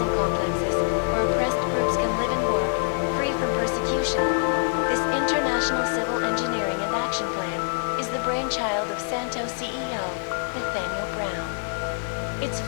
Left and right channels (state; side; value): silent; right; digital silence